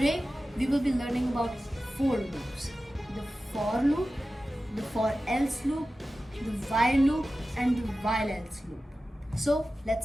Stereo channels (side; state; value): both; normal; correlation 0.94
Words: we will be learning about four loops: the for loop, the for else loop, the while loop, and the while else loop. So